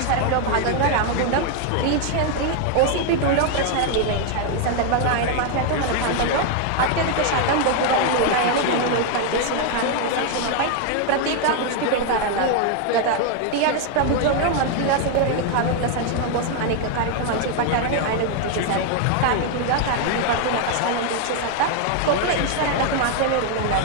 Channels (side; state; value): both; different; correlation 0.00